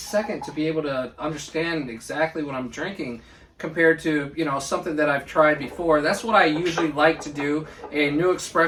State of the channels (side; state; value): both; identical; correlation 1.00